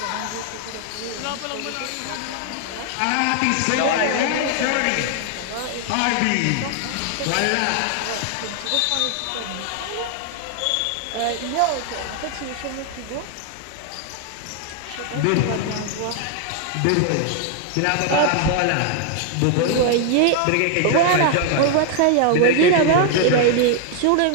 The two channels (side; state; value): both; different; correlation 0.00